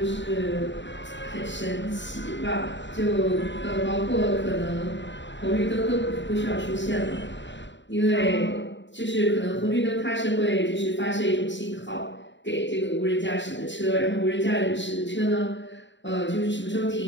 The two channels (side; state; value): right; late; 0.53 ms